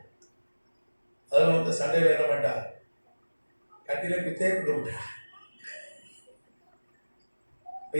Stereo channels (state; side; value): inverted; both; correlation -1.00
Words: அதில் வந்து சண்டையில் என்ன பண்ணிட்டான், கட்டில குத்தே கொடுத்தா. இப்போ